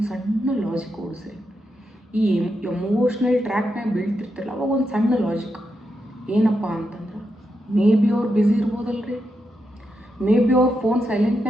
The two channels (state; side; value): normal; both; correlation 0.85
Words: ಸಣ್ಣ ಲಾಜಿಕ್ ಓಡಿಸ್ರಿ. ಈ ಎಮೋಷ್ನಲ್ ಟ್ರ್ಯಾಕ್ನಾಗ ಬೀಳ್ತಿರ್ತಿರಲ್ಲ, ಅವಾಗ ಒಂದು ಸಣ್ಣ ಲಾಜಿಕ್ ಏನಪ್ಪ ಅಂತಂದ್ರೆ, ಮೇ ಬಿ ಅವ್ರು ಬ್ಯುಸಿ ಇರ್ಬೋದಲ್ರಿ, ಮೇ ಬಿ ಅವ್ರ ಫೋನ್